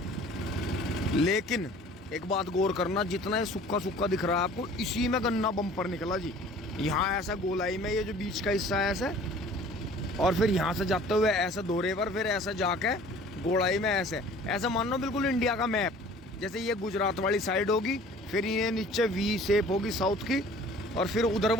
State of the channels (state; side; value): normal; both; correlation 0.49